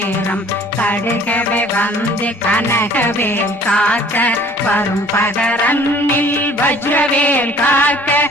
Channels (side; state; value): both; normal; correlation 0.53